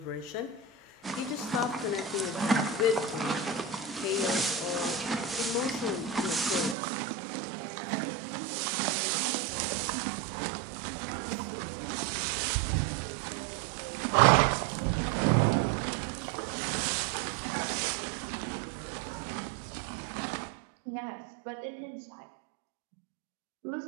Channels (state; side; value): drops out; left; at 6.8 s